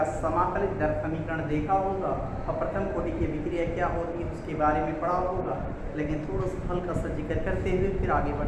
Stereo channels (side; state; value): both; identical; correlation 1.00